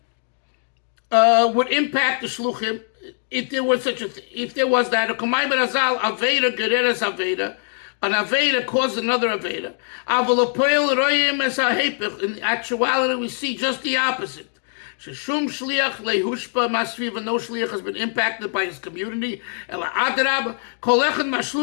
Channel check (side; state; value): right; silent; digital silence